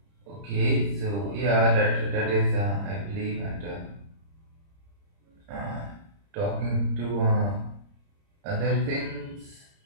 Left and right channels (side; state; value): left; late; 30 ms